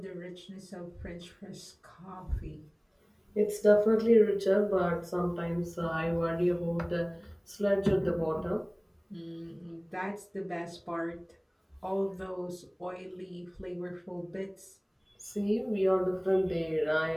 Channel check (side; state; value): both; identical; correlation 1.00